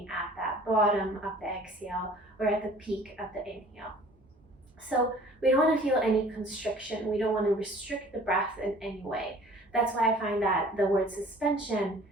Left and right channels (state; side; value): normal; both; correlation 0.50